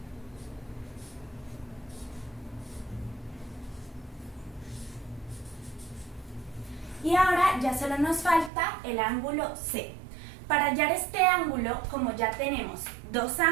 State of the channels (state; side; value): drops out; left; at 8.5 s